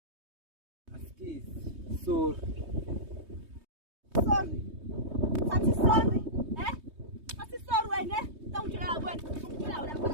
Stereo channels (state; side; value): late; left; 3.2 ms